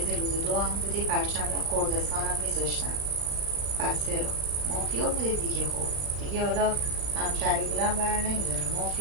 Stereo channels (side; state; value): left; late; 35 ms